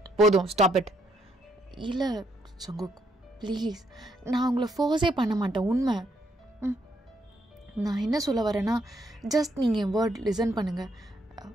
போதும் ஸ்டாப் இட். இல்லை ஜங்குக் ப்ளீஸ், நான் உங்களை ஃபோர்ஸே பண்ண மாட்டேன், உண்மை. நான் என்ன சொல்ல வரேன்னா, ஜஸ்ட் நீங்கள் என் வேர்ட் லிசன் பண்ணுங்கள்.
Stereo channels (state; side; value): normal; both; correlation 0.73